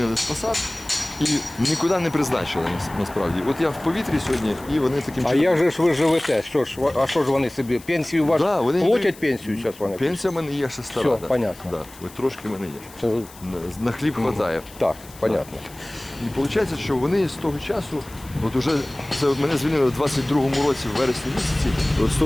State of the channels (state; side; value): noise; left; hiss, 20 dB below the sound